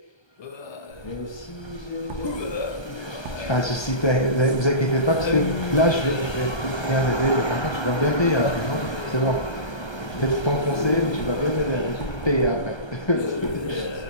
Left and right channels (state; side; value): late; right; 1.3 ms